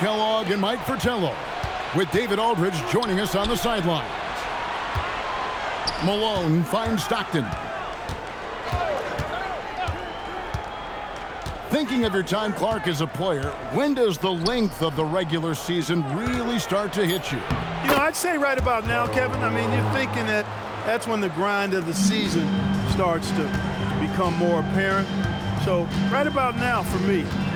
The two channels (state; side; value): identical; both; correlation 1.00